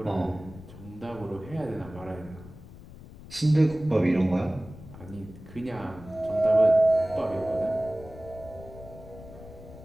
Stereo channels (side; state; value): left; noise; rumble, 17 dB below the sound